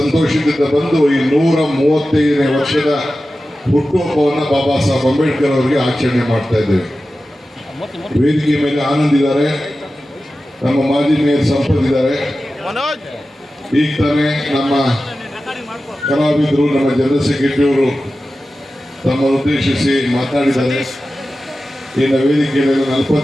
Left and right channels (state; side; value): normal; both; correlation 0.94